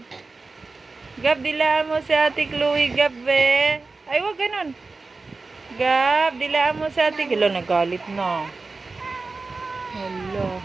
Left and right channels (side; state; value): left; quieter; 3.8 dB